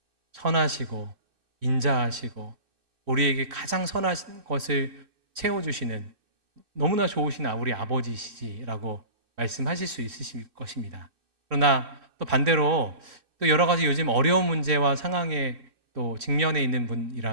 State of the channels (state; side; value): late; left; 3.3 ms